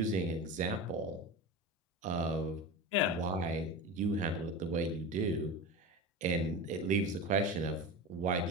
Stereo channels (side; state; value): both; normal; correlation 0.27